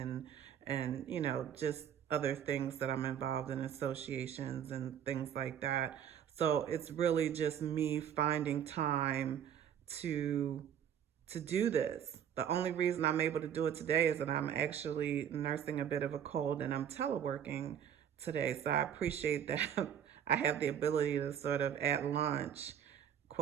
just other things that I'm involved in, associations and things like that. So it's really just me finding time to do this. The only reason I'm able to do it today is that I'm actually nursing a bit of a cold and I'm teleworking today. So I appreciate that I have the ability to sort of at lunch,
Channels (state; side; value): quieter; left; 9.1 dB